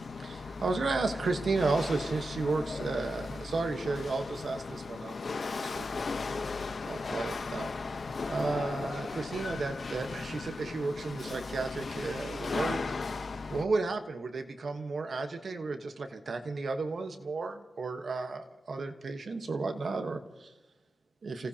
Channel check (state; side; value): normal; both; correlation 0.90